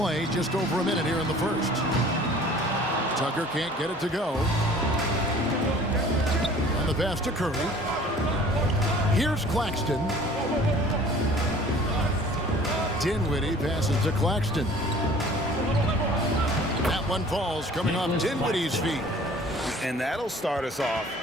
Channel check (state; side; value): normal; both; correlation 0.49